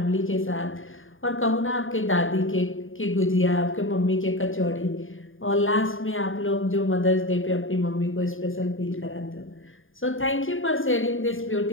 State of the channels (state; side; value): late; right; 0.59 ms